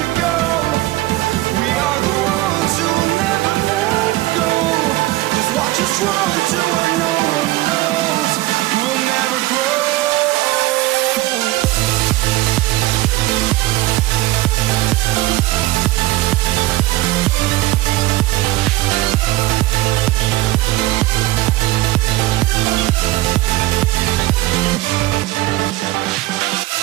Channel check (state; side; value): quieter; left; 18.0 dB